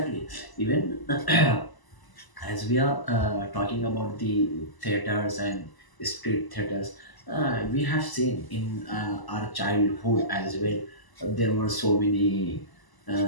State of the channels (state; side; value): late; right; 1.0 ms